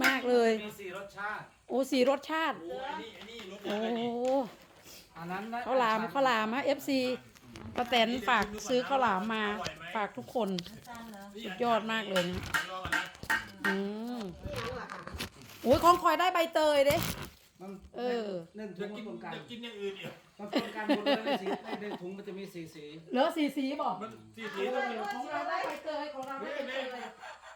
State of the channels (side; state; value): both; identical; correlation 1.00